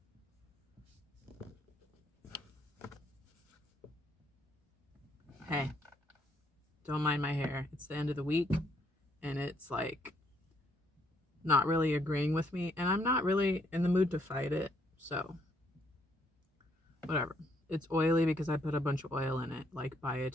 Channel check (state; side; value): normal; both; correlation 0.70